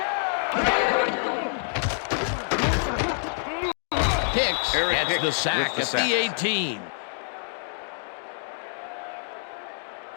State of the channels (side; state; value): right; silent; digital silence